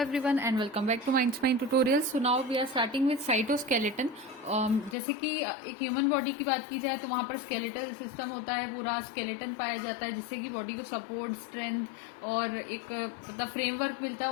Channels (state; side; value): drops out; right; at 5.0 s